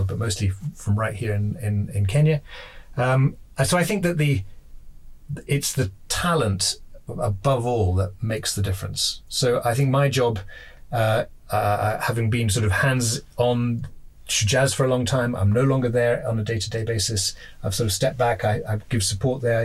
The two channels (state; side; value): identical; both; correlation 1.00